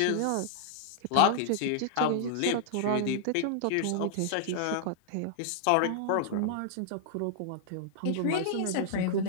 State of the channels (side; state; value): both; different; correlation -0.01